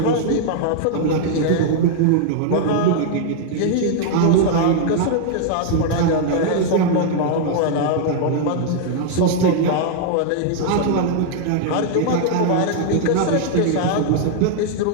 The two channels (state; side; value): different; both; correlation -0.01